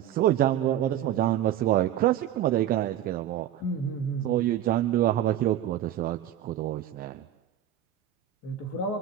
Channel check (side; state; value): left; quieter; 11.4 dB